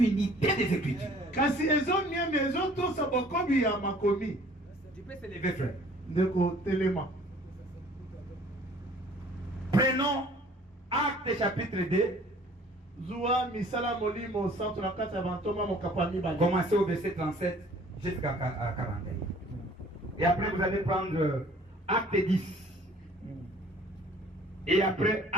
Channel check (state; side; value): normal; both; correlation 0.53